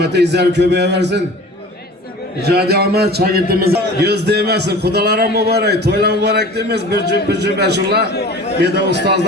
izler köpeğe versin. Icadi Ahmet şagirdimiz göz değmesin. Kudalara mübarek, toyla mübarek demez. Bir cüm beşullah. Bir de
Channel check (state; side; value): normal; both; correlation 0.41